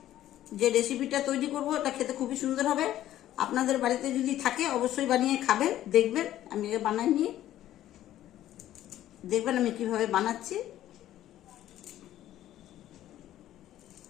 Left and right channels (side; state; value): right; quieter; 13.0 dB